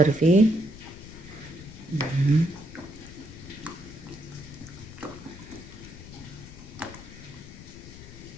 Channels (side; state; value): left; noise; rumble, 15 dB below the sound